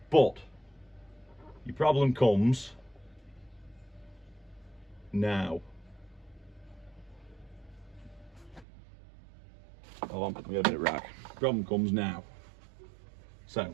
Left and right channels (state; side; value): drops out; left; at 8.7 s